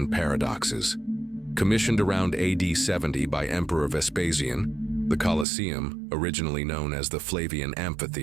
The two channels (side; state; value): left; drops out; at 5.5 s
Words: paradoxes. Commissioned around AD 70 by Emperor Vespasian, the Colosseum, originally known as the Flavian